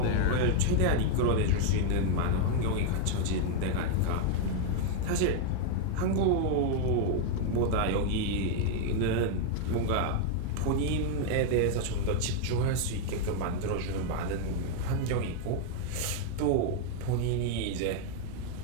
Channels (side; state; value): both; different; correlation 0.00